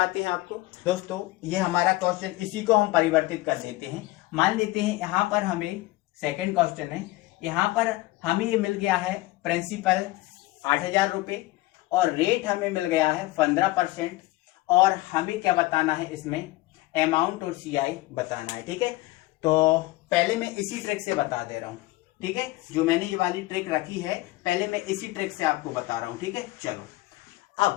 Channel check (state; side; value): quieter; right; 19.3 dB